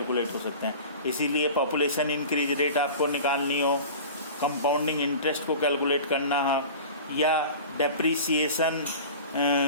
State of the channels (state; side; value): inverted; both; correlation -0.37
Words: हो सकते हैं। इसीलिए पॉपुलेशन इंक्रीज रेट आपको निकालनी हो, कंपाउंडिंग इंटरेस्ट को कैलकुलेट करना हो, या डेप्रीसिएशन